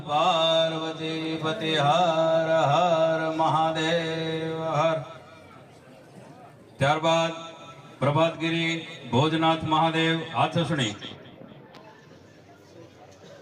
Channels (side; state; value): both; identical; correlation 1.00